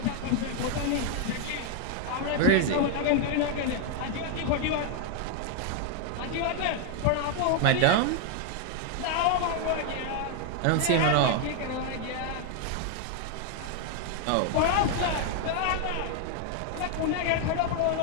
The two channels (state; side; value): different; both; correlation 0.00